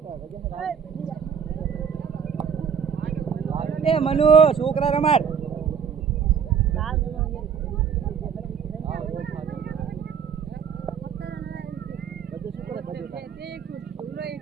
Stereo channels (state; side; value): quieter; left; 7.1 dB